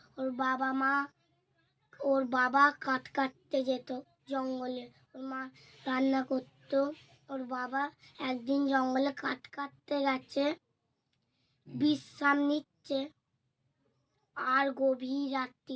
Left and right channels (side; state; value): both; identical; correlation 1.00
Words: ওর বাবা কাঠ কাটতে যেত জঙ্গলে, ওর মা রান্না করতো। ওর বাবা একদিন জঙ্গলে কাঠ কাটতে গেছে, বিশ্রাম নিচ্ছে, আর গভীর